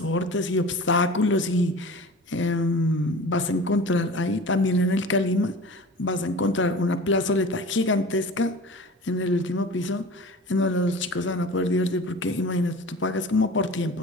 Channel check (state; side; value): normal; both; correlation 0.38